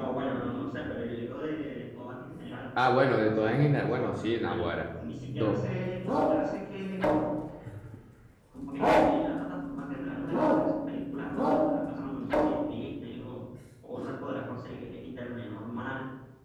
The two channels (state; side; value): identical; both; correlation 1.00